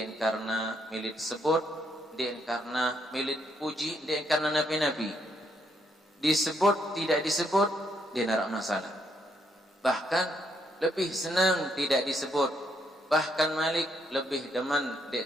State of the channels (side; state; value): both; normal; correlation 0.74